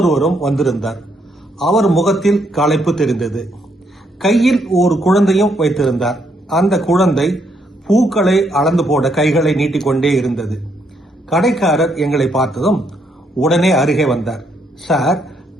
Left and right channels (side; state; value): both; normal; correlation 0.74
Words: வந்திருந்தார். அவர் முகத்தில் களைப்பு தெரிந்தது. கையில் ஒரு குழந்தையும் வைத்திருந்தார். அந்த குழந்தை பூக்களை அளந்து போட கைகளை நீட்டிக்கொண்டே இருந்தது. கடைக்காரர் எங்களை பார்த்ததும் உடனே அருகே வந்தார். சார்,